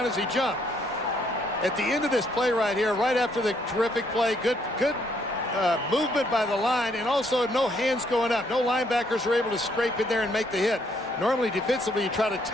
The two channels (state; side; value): normal; both; correlation 0.69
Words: as he jumped. At the end of this play right here, right after the terrific play, good movement by the line, and also no hands going up. No linebackers are able to scrape in there and make the hit. Normally, defensively, you try to